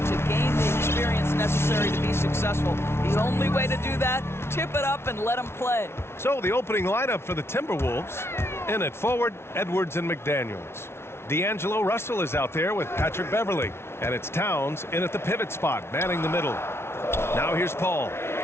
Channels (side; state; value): right; late; 0.12 ms